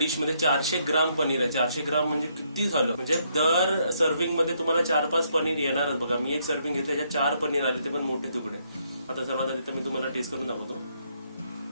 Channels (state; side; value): inverted; both; correlation -0.73